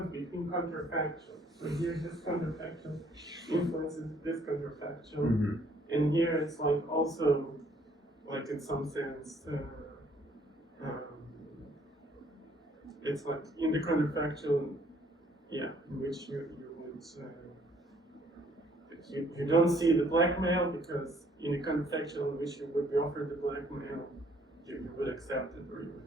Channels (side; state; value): both; normal; correlation 0.63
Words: between counterfactual. So here this counterfactual influences this counterfactual. Mm-hmm. And here it's like also, like in some sense, it's like in the counterfactual, in which you would, you don't see the blackmail because in the counterfactual in which you would be offered the blackmail, you would accept it or you